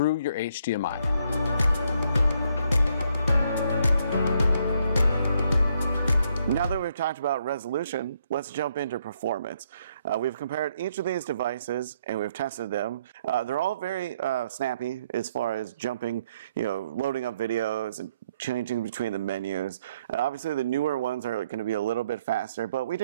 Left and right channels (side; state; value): both; inverted; correlation -0.71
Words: your HDMI. Now that we've talked about resolution, let's jump into performance. We've compared each of these devices and we've tested them. They're all very snappy as far as jumping, loading up videos and changing between the menus. Obviously the newer ones are going to be a little bit faster, but we